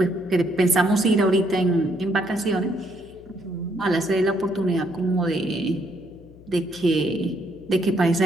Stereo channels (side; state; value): left; noise; hum, 22 dB below the sound